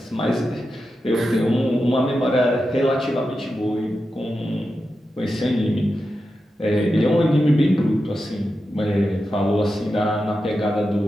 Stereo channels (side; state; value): both; normal; correlation 0.90